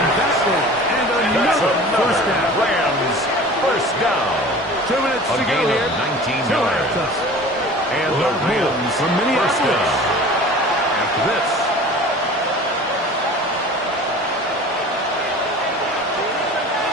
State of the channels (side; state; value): both; normal; correlation 0.41